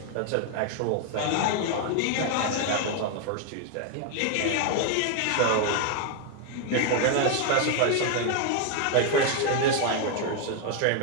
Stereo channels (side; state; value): both; different; correlation 0.01